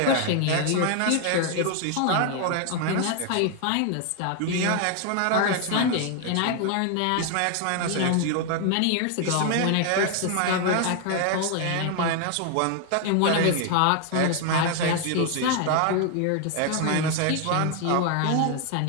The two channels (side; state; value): both; different; correlation 0.00